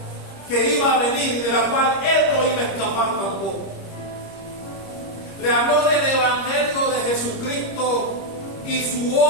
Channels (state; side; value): late; right; 25 ms